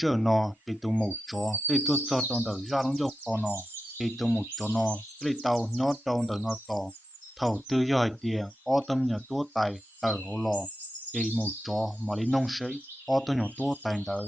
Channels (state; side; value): normal; both; correlation 0.90